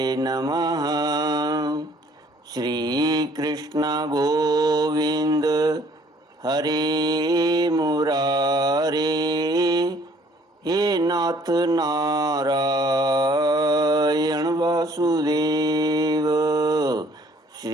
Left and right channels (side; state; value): both; normal; correlation 0.59